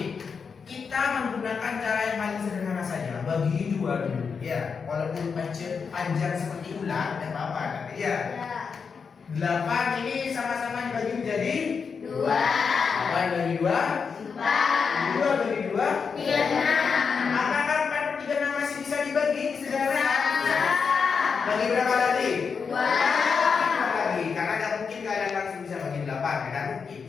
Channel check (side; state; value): right; quieter; 5.7 dB